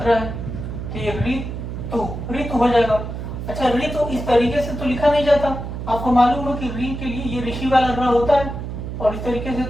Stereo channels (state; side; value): noise; right; hum, 7 dB below the sound